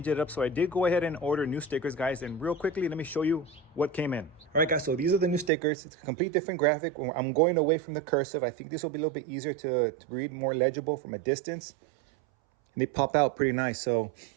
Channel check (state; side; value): drops out; left; at 5.5 s